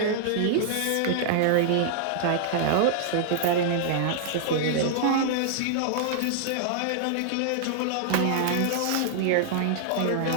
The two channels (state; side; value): different; both; correlation -0.01